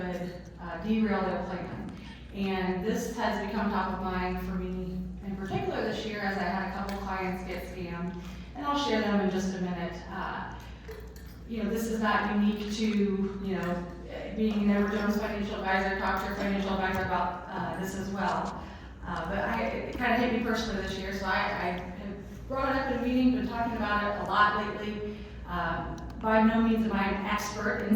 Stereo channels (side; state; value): both; identical; correlation 1.00